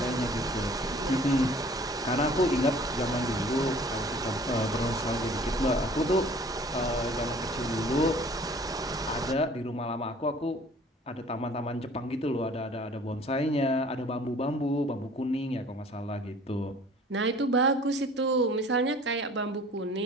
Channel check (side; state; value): both; normal; correlation 0.50